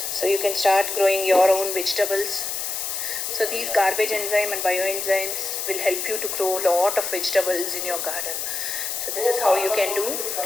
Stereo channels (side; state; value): left; noise; hiss, 3 dB below the sound